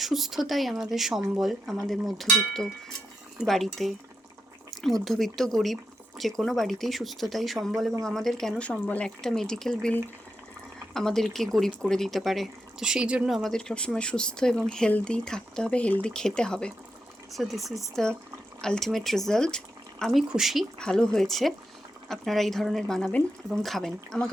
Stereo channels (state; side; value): normal; both; correlation 0.85